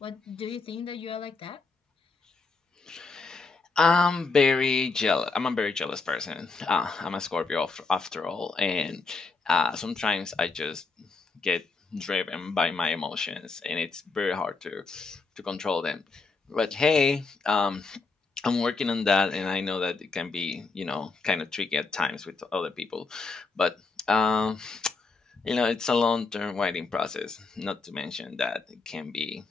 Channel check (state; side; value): quieter; right; 4.2 dB